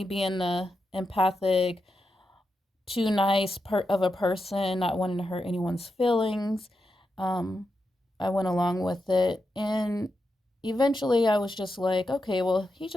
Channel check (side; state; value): both; normal; correlation 0.87